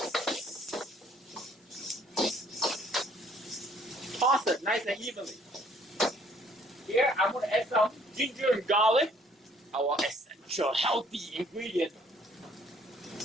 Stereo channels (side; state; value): both; normal; correlation 0.61